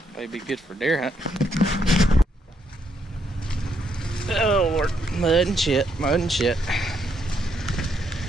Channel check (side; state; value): both; normal; correlation 0.75